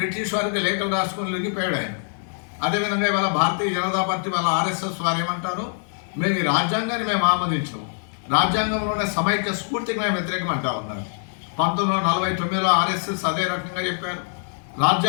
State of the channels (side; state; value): right; silent; 63 dB below the other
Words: వారికి లేఖలు రాసుకొని లొంగిపోయాడు ఆయన. అదేవిధంగా ఇవాళ భారతీయ జనతా పార్టీ వాళ్ళ ఆర్ఎస్ఎస్ వారు ఏమంటారు, మేము ఈ రాజ్యాంగాన్ని మేము ఆమోదించాము, రాజ్యాంగంలోనే సమైక్య స్ఫూర్తికి మేము వ్యతిరేకం అంటా ఉన్నారు. 1949లో ఆర్ఎస్ఎస్ అదే రకంగా చెప్పారు.